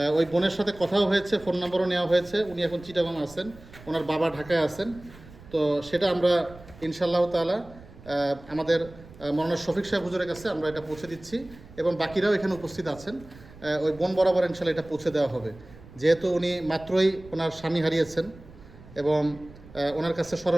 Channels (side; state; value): right; noise; rumble, 20 dB below the sound